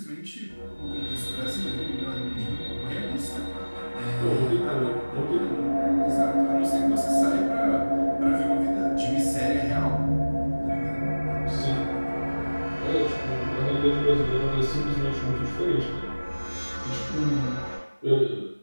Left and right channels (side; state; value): both; inverted; correlation -1.00